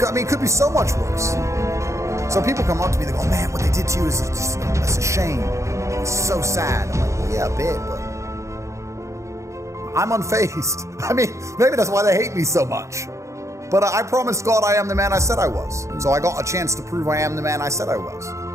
could be so much worse. So people come up to me, they go, man, what they did to you is just, it's a shame. It's so sad. I'm like, well, yeah, a bit, but I'm unfazed. I mean, maybe that's why they hate me so much. But I promised God I am the man I said I was. So I got a chance to prove I am the man I said I was.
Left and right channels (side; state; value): left; late; 0.14 ms